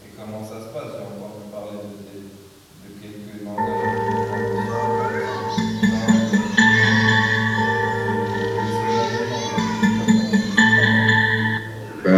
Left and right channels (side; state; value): both; identical; correlation 1.00